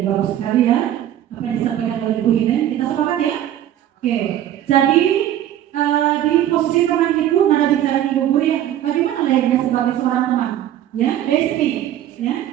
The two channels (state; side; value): quieter; left; 11.8 dB